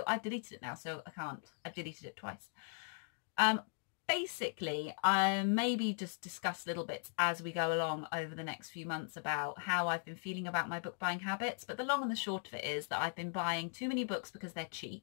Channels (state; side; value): silent; right; 52 dB below the other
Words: I've deleted it now, so I can't. I've deleted it twice. Basically, I maybe just discuss little bits as we go along over the next few months about how I've been feeling about my book buying habits. But the long and the short of it is that I've been buying too many books because they're